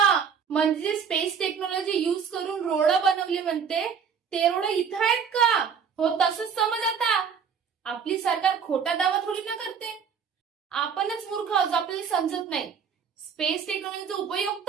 म्हणजे स्पेस टेक्नॉलॉजी युज करून रोड बनवली म्हणते, ते रोड इथं आहेत का? हो, तसंच समज आता. आपली सरकार खोटा दावा थोडी ना करते. आपणच मूर्ख आहोत, आपल्याला समजत नाही. स्पेस टेक्नॉलॉजीचा उपयोग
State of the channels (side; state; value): left; quieter; 6.7 dB